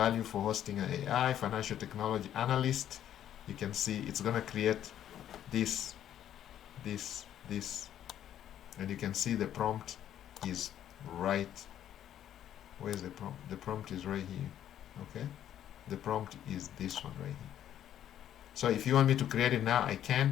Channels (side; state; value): right; quieter; 10.8 dB